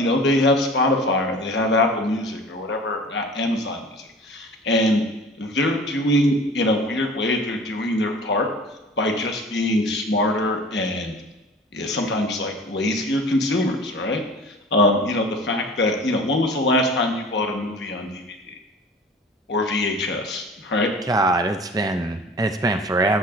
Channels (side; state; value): both; normal; correlation 0.42